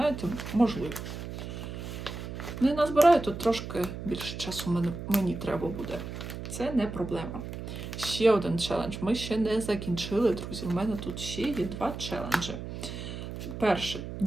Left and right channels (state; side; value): noise; right; hum, 8 dB below the sound